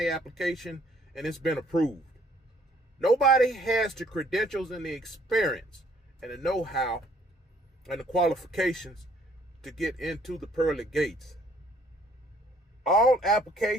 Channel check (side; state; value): both; normal; correlation 0.62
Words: application and it's been approved. Nobody has the credentials and the experience and the know-how and the qualifications to get into the pearly gates. All